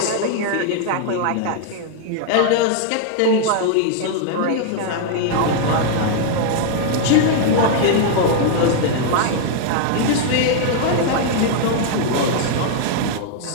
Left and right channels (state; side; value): different; both; correlation -0.01